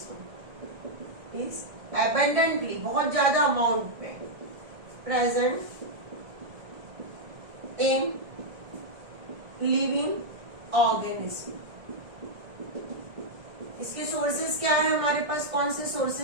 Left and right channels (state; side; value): late; left; 1.7 ms